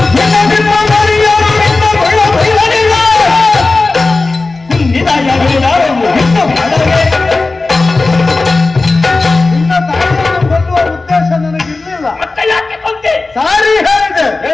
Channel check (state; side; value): quieter; right; 3.5 dB